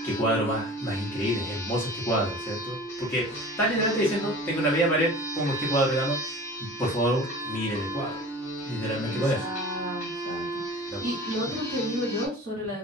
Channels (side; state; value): both; normal; correlation 0.40